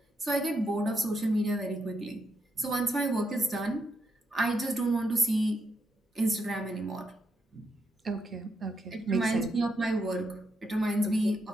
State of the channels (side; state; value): both; normal; correlation 0.80